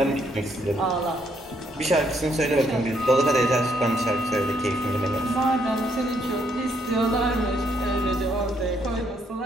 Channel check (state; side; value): normal; both; correlation 0.72